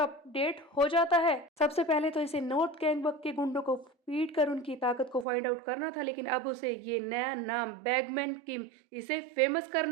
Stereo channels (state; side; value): drops out; left; at 5.2 s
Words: हो जाता है। सबसे पहले तो इसे नॉर्थ गैंगबक के गुंडों को पीट कर उनकी ताकत को फाइंड आउट करना था, लेकिन अब उसे ये नया नाम बैगमैन किम, इसे फेमस